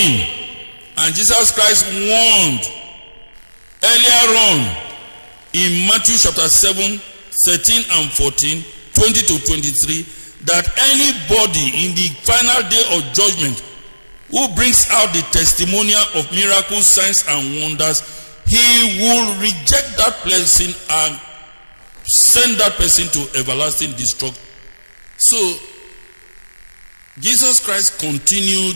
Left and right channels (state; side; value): inverted; both; correlation -1.00